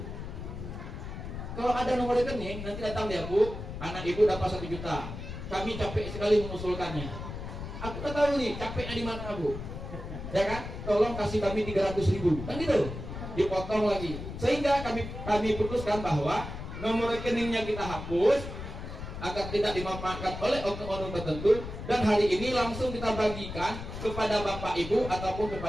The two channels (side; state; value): left; noise; rumble, 8 dB below the sound